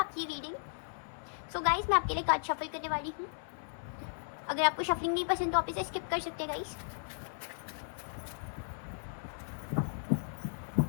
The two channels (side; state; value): right; silent; 54 dB below the other